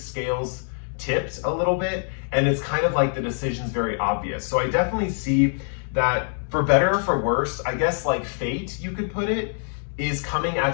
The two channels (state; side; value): silent; right; 62 dB below the other